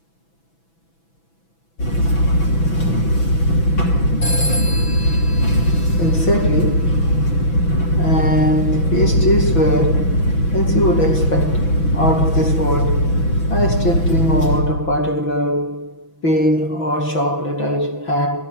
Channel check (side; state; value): right; late; 6.0 ms